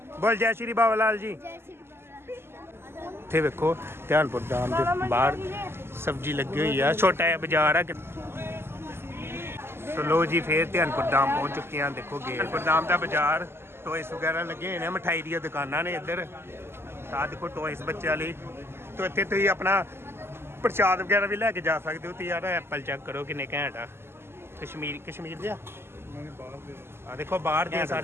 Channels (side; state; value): left; late; 0.12 ms